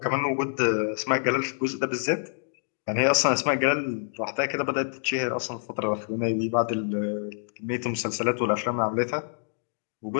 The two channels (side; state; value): right; silent; digital silence